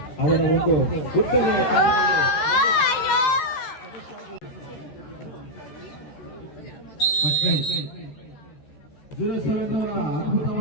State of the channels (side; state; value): right; late; 14 ms